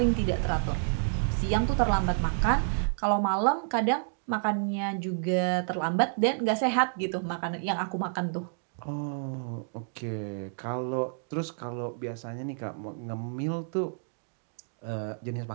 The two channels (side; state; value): left; silent; digital silence